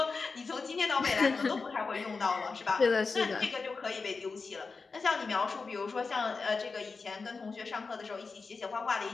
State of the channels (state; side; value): quieter; right; 4.4 dB